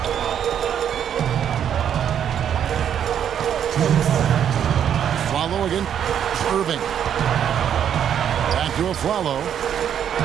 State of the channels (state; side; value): quieter; left; 9.1 dB